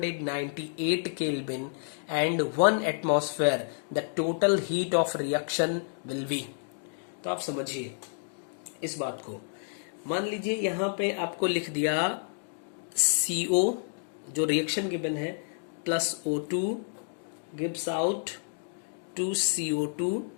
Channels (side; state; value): right; silent; digital silence